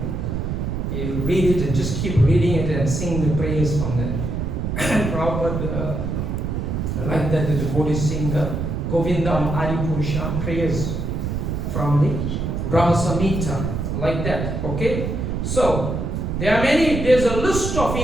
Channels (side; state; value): right; noise; rumble, 2 dB below the sound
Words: book. You read it and just keep reading it and sing the prayers from there. Prabhupada, I like that the devotees sing the Govindam Adipurusham prayers from the Brahma Samhita, like that. Okay? So, there's a list of